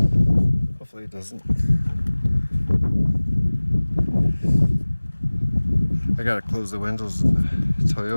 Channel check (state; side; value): inverted; both; correlation -1.00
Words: Hopefully it doesn't. I gotta close the windows of the